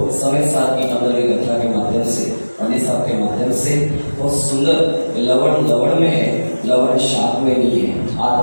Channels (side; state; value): both; inverted; correlation -1.00